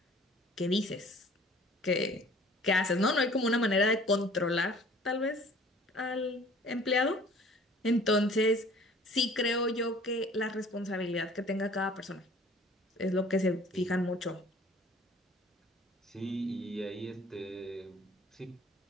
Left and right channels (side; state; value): both; normal; correlation 0.51